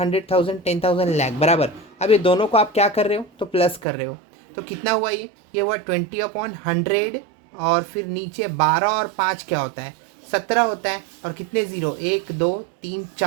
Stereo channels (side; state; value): left; drops out; at 3.9 s